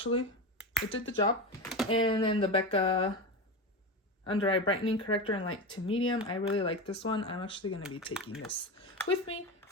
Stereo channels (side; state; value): both; normal; correlation 0.21